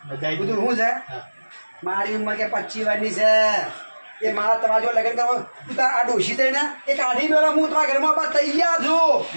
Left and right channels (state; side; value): inverted; both; correlation -1.00